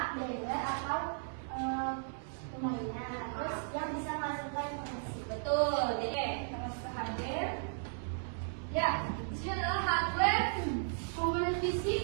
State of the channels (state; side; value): silent; left; 54 dB below the other